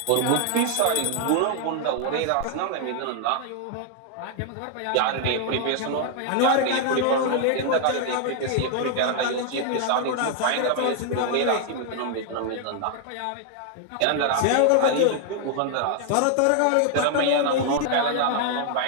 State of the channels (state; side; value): different; both; correlation 0.00